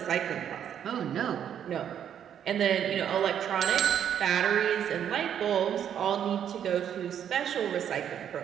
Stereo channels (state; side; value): quieter; left; 9.3 dB